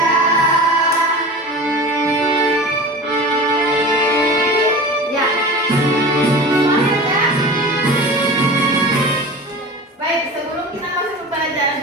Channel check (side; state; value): both; normal; correlation 0.35